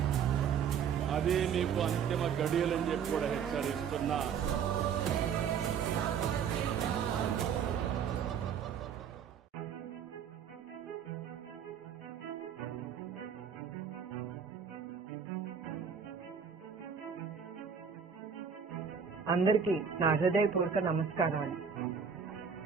అదే మీకు అంతిమ గడియలని చెప్పి కూడా హెచ్చరిస్తున్నా. అందరికీ నా హృదయపూర్వక నమస్కారాలు.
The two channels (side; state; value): left; quieter; 7.1 dB